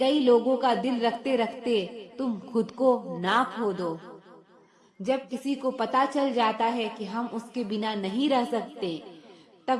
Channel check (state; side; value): identical; both; correlation 1.00